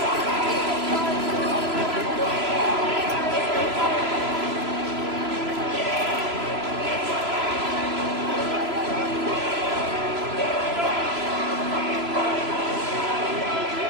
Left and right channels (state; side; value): late; left; 3.0 ms